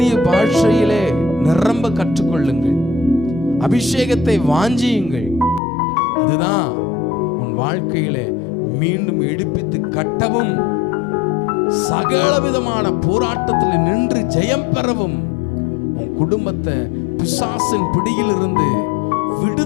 பாஷையிலே நிரம்ப கற்றுக்கொள்ளுங்கள். அபிஷேகத்தை வாஞ்சியுங்கள். அதுதான் உன் வாழ்க்கையிலே மீண்டும் எடுப்பித்து கட்டவும், சகல விதமான போராட்டத்தில் நின்று ஜெயம் பெறவும், உன் குடும்பத்தை பிசாசின் பிடியில் இருந்து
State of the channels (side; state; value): right; drops out; at 5.6 s